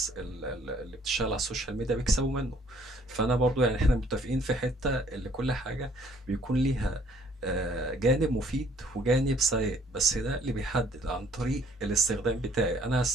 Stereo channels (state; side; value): normal; both; correlation 0.61